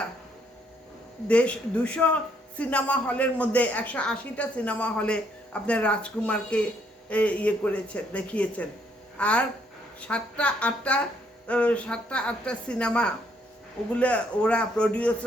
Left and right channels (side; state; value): both; normal; correlation 0.70